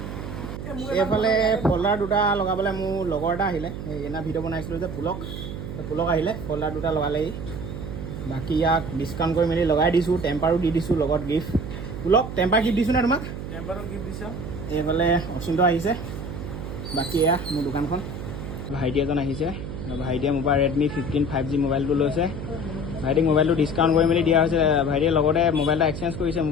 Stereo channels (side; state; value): right; noise; hum, 7 dB below the sound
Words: এইফালে ফল্ডাৰ দুটা লগাবলৈ মোৰ লগৰ এটা আহিলে, এনা ভিডিঅ' বনাইছিলোঁ যে পুলক আহিলে, ফল্ডাৰ দুটা লগালেহি। বাকী ইয়াক ডিছকাউণ্ট কৰি মেলি লগাই দিছোঁ, টেম্পাৰো দি দিছোঁ লগত গিফ্ট। পুলক টেম্পাৰ গিফ্ট দিছোঁ নে তোমাক? টেম্পাৰো গিফ্ট দিছোঁ। এইফালে অচিন্ত আহিছে। বাকী এয়া মোৰ দোকানখন। ভাইটি এজন আহিছে, ভাইটিয়ে মোৰ পৰা Redmi 15 5G মোবাইলটো লৈছে। ভাইটিক মোবাইলটো ডিছকাউণ্ট কৰি মেলি দিয়া হৈছে। ভাইটিয়ে লগতে মোবাইল এটা এক্সচেঞ্জ কৰিছে